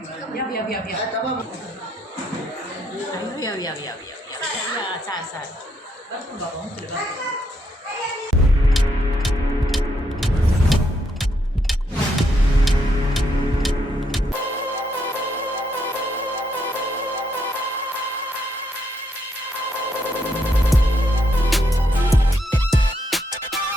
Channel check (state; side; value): normal; both; correlation 0.76